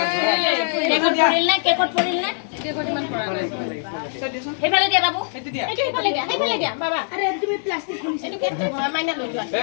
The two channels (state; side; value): silent; right; digital silence